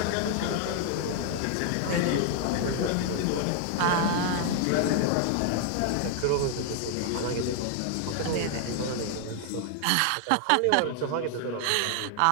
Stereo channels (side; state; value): both; different; correlation 0.00